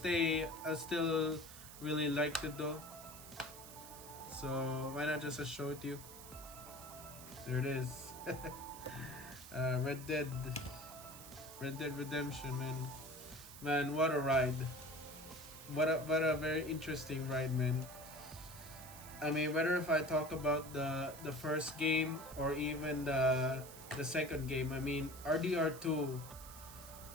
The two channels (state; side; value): noise; right; hiss, 15 dB below the sound